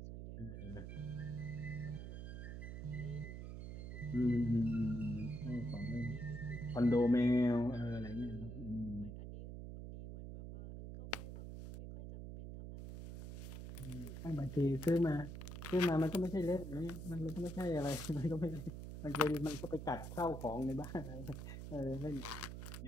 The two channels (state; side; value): noise; right; hum, 8 dB below the sound